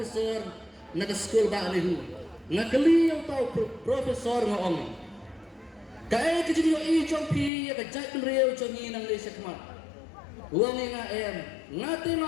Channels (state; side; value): drops out; right; at 7.5 s